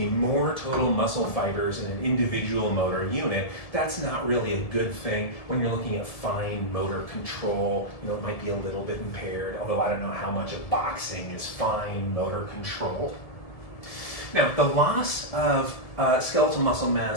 more total muscle fibers in an individual motor unit. That's not really a good thing when you're looking at fine motor control. It might be a little bit impaired, although I don't know how much of boxing is fine motor control. Now, the loss of skeletal muscle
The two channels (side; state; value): right; late; 1.7 ms